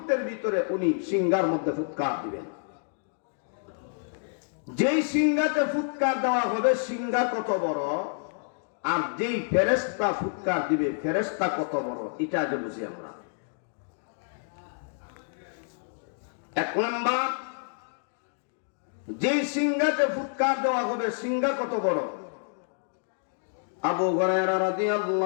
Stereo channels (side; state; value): right; silent; digital silence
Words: ভিতরে উনি সিংহার মধ্যে ফুৎকার দিবেন। যেই সিংহাতে ফুৎকার দেওয়া হবে, সিংহা কত বড়, আর যেই ফেরেশতা ফুৎকার দিবে ফেরেশতা কত বড়, এটা আগে বুঝি আমরা। এক নাম্বার, যেই সিংহাতে ফুৎকার দেওয়া হবে সিংহা কত বড়? আবু হুরায়রা